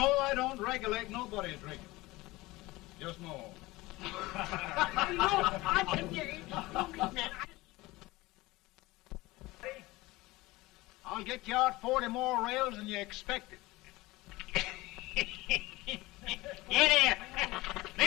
I don't regulate nobody's drinking. Just no. No, I can get it. I'll get you out 40 more rails than you expected. Get here.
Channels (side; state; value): right; quieter; 20.3 dB